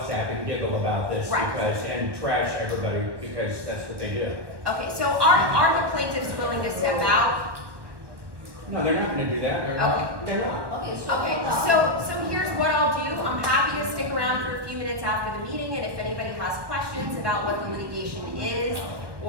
and giggle about this Right. because, and trash everybody because that's what they do. Okay, so are the plaintiffs willing to step out? No, they're not gonna do that. They're Okay. not. They're not. Okay, Okay, so here's what I'll do. I'm happy to stick around for a few minutes after the meeting, and if anybody has questions about what the litigation is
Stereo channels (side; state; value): left; late; 1.2 ms